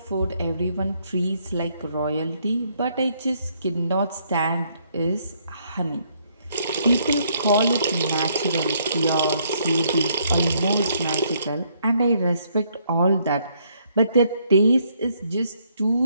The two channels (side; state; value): both; inverted; correlation -0.70